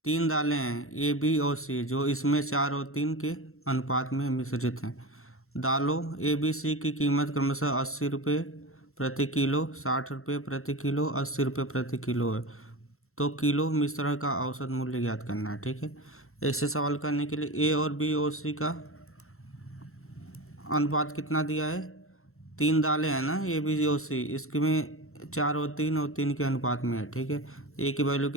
3 दालें हैं ए, बी और सी, जो इसमें 4 और 3 के अनुपात में मिश्रित हैं। दालों ए, बी, सी की कीमत क्रमशः 80 रुपये प्रति किलो, 60 रुपये प्रति किलो, 80 रुपये प्रति किलो है। तो किलो मिश्रण का औसत मूल्य ज्ञात करना है, ठीक है। ऐसे सवाल करने के लिए ए और बी और सी का अनुपात कितना दिया है? 3 दालें हैं ना, ए, बी और सी, इसके में 4 और 3 के अनुपात में है, ठीक है। ए की वैल्यू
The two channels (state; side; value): late; right; 0.62 ms